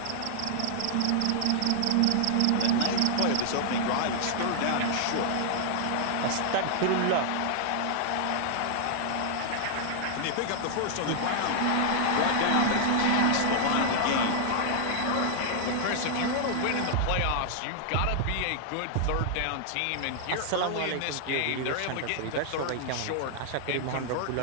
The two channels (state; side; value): different; both; correlation -0.01